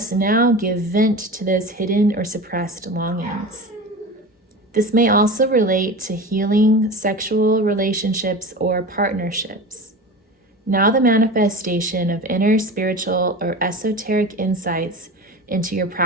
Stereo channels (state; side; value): normal; both; correlation 0.31